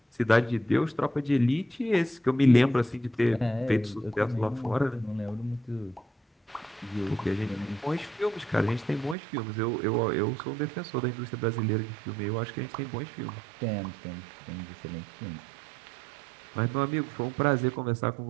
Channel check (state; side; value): drops out; left; at 9.2 s